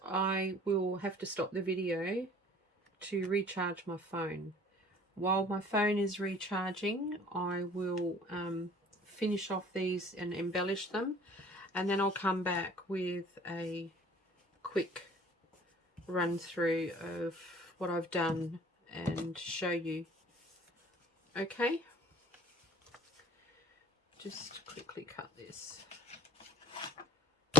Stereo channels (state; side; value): normal; both; correlation 0.50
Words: I will have to stop the video to recharge my phone. While my phone is recharging, I will finish off these and embellish them, and then I'll come back with a quick run through of what I've done and show you. Okay, just quickly cut this.